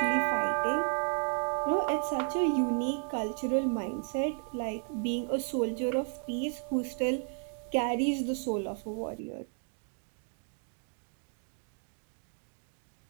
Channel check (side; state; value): left; silent; 56 dB below the other